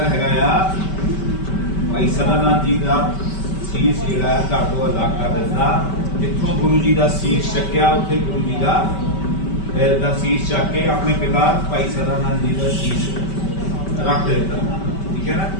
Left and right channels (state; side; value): late; right; 5.2 ms